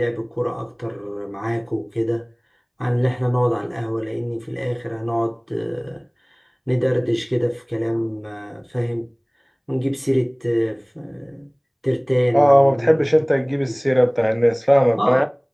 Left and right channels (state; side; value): identical; both; correlation 1.00